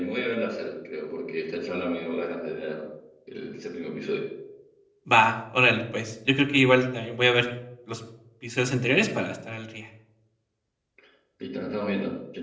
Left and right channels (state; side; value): identical; both; correlation 1.00